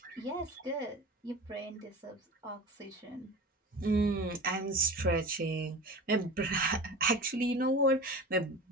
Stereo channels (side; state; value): both; normal; correlation 0.34